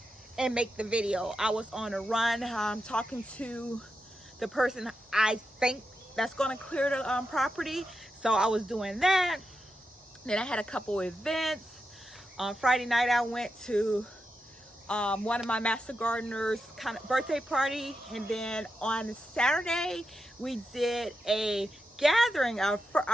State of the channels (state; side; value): normal; both; correlation 0.88